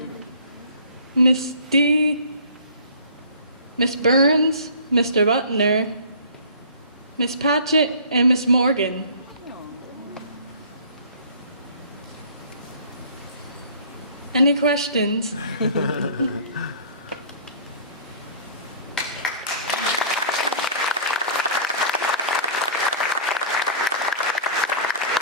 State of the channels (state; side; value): inverted; both; correlation -0.45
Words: Miss D, Miss Burns, Mr. Butner, Miss Patchett, and Miss Morgan. Any questions?